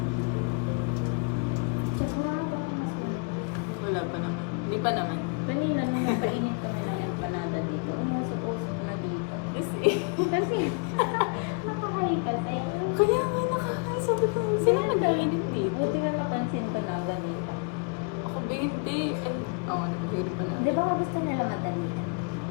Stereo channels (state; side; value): quieter; right; 35.6 dB